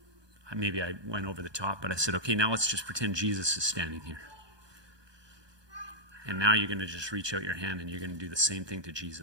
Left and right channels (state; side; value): late; left; 1.2 ms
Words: maybe I went over the top, but I said, okay, now let's just pretend Jesus is standing here. And now you're going to just reach out your hand and you're going to do the same thing to